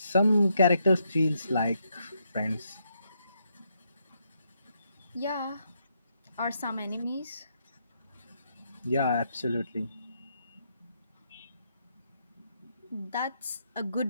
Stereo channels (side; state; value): both; inverted; correlation -0.78